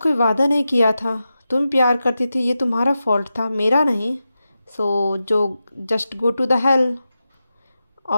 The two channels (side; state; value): both; inverted; correlation -0.91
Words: कोई वादा नहीं किया था। तुम प्यार करती थी, ये तुम्हारा फॉल्ट था, मेरा नहीं। सो जो just go to the hell.